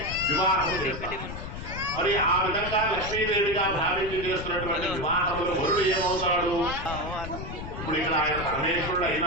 వివాహం చేస్తాం. మరి ఆ విధంగా లక్ష్మీదేవిగా భావించి చేస్తున్నటువంటి వివాహంలో వరుడు ఏమవుతాడు? ఇప్పుడు ఇక్కడ ఆయన పరమేశ్వరుడు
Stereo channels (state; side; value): noise; left; rumble, 8 dB below the sound